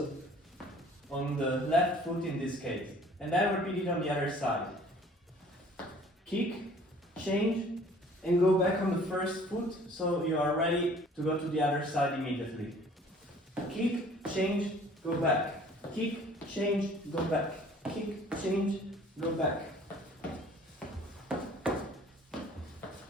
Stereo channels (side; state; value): both; normal; correlation 0.53